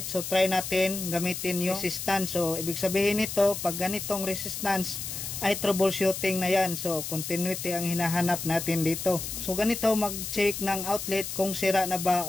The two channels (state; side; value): noise; left; hiss, 6 dB below the sound